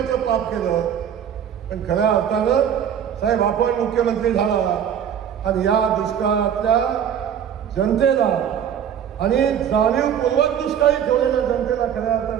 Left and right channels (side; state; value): left; quieter; 8.9 dB